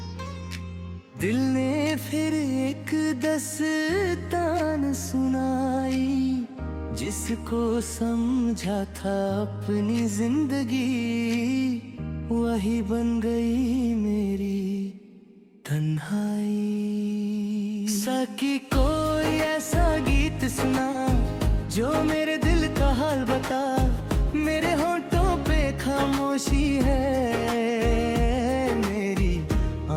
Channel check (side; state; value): both; identical; correlation 1.00